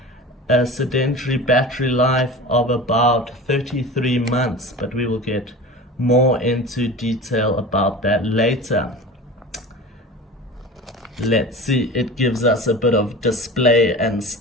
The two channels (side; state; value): both; normal; correlation 0.34